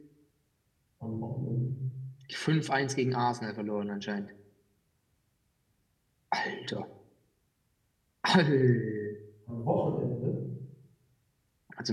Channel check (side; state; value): both; identical; correlation 1.00